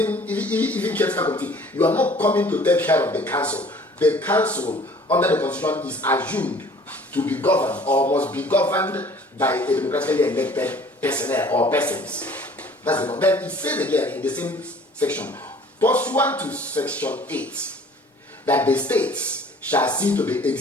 caretaker committee. You are not coming to take care of the council. The council under the constitution is assumed to be governed or must be governed by a democratically elected personnel or persons. That's the. Then it says again in the same section, pursuant to section 8, that the states shall see to the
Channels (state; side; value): normal; both; correlation 0.51